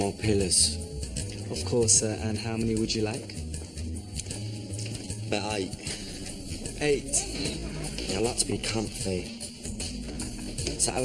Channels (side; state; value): both; identical; correlation 1.00